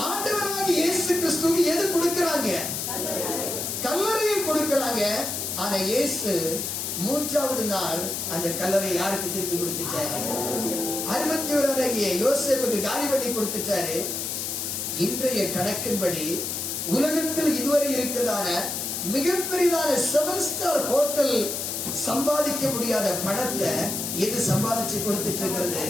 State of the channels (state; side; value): noise; left; hiss, 3 dB below the sound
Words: ஆண்டவராக இயேசு கிறிஸ்துவுக்கு எது கொடுக்கிறாங்க? கல்லறையை கொடுக்கிறாங்க. ஆனா இயேசு மூன்றாவது நாள் அந்த கல்லறை யாருக்கு திருப்பி கொடுத்துட்டாரு? அரிமத்தியூரானாகிய யோசேப்புக்கு காலி பண்ணி கொடுத்துட்டாரு. இன்றைய கணக்கின்படி உலகத்தில் இதுவரை இருக்கிறதான மிகப்பெரியதான 7 ஸ்டார் ஹோட்டல் சம்பாதிக்க முடியாத பணத்தை எது சம்பாதிச்சு கொடுத்துட்டு இருக்கிறது?